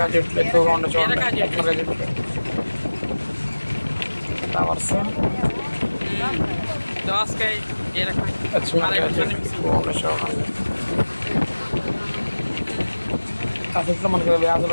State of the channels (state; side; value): inverted; both; correlation -1.00